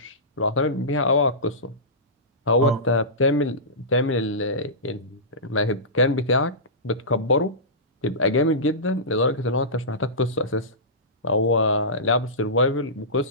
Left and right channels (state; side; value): normal; both; correlation -0.19